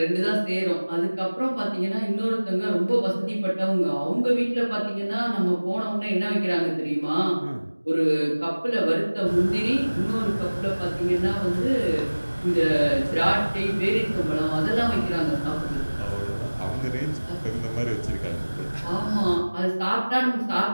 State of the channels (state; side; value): inverted; both; correlation -1.00